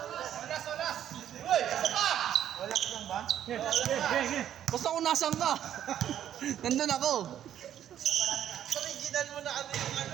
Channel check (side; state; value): left; quieter; 10.6 dB